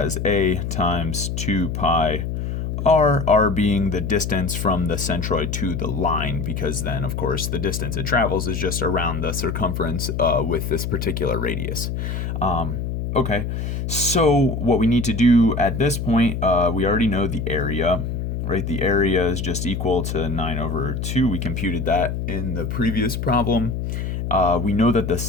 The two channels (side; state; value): left; noise; hum, 3 dB below the sound